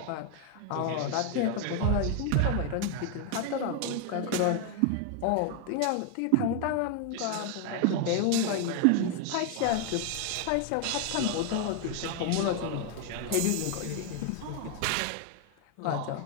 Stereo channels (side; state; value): both; different; correlation 0.00